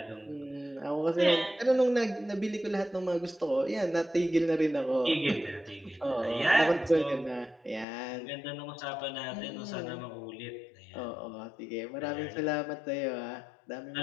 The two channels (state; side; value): drops out; right; at 7.9 s